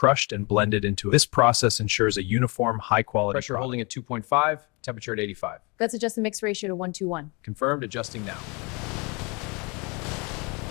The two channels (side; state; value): right; quieter; 29.4 dB